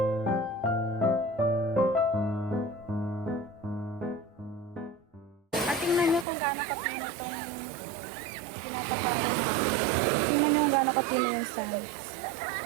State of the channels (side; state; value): left; drops out; at 6.2 s